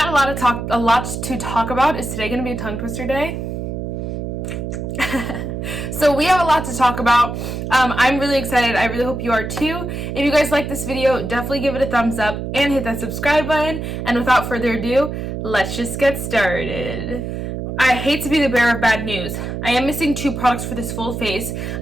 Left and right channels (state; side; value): noise; right; hum, 5 dB below the sound